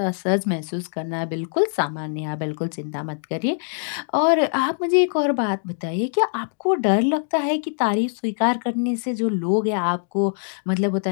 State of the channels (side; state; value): right; silent; digital silence